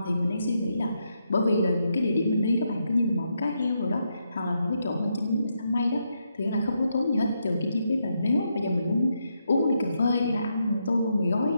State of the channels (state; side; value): inverted; both; correlation -0.81